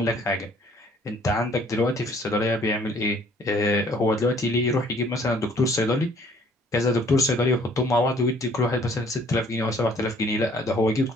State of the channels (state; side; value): normal; both; correlation 0.59